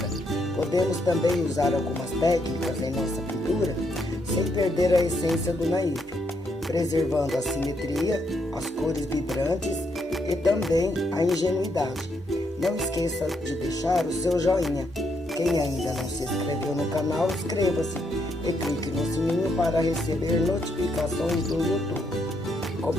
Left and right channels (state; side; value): normal; both; correlation 0.77